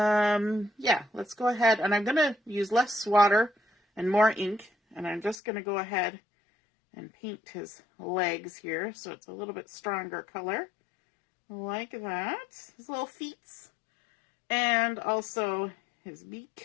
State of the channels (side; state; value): right; drops out; at 5.4 s